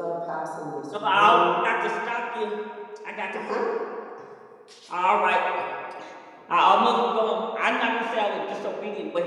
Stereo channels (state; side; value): identical; both; correlation 1.00